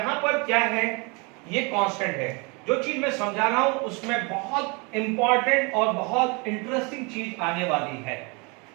पर क्या है, ये कांस्टेंट है। जो चीज मैं समझा रहा हूं उसमें बहुत इंपॉर्टेंट और बहुत इंटरेस्टिंग चीज आने वाली है।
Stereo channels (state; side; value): quieter; left; 30.2 dB